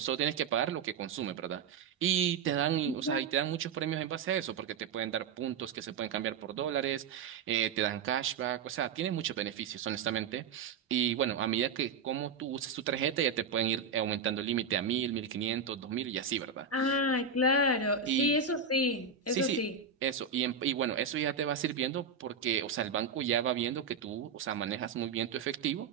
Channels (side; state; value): left; quieter; 5.5 dB